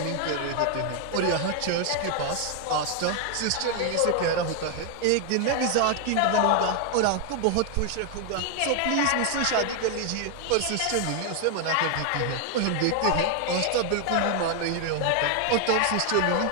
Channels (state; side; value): different; both; correlation 0.00